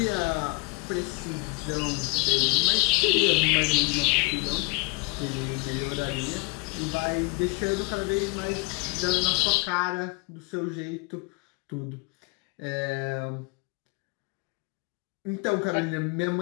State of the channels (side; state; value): right; quieter; 27.0 dB